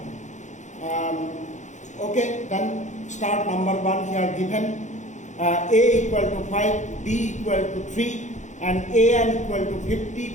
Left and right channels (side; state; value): right; late; 0.35 ms